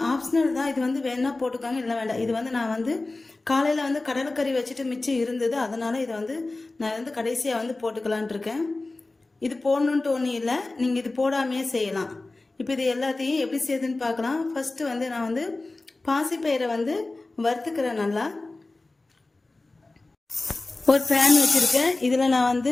ஆப்ஷனல் தான். இது வந்து வேணா போட்டுக்காங்க, இல்லை வேண்டாம். இது வந்து நான் வந்து காலையில் வந்து கடலைக்கறி வச்சுட்டு மிச்சம் இருந்தது, அதனால் இதை வந்து நான் வந்து கடைசியாக வந்து போட்டுக்கலான் இருக்கேன். இது போடணுன்ட்டு ஒன்றும் இல்லை, நீங்கள் இது போடாமையே செய்யலாம். இப்போ இது எல்லாத்தையும் எப்படி செய்யுதுன்னு பார்க்கலாம். ஃபஸ்ட்டு வந்து நான் வந்து பாசிப்பயிரை வந்து வறுத்துக்கிறேன். நல்லா ஒரு பேன் வச்சுருக்கேன். இதில் நான் வந்து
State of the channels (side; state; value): right; quieter; 3.2 dB